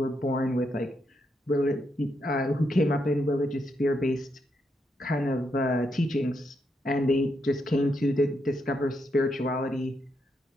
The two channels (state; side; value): normal; both; correlation 0.80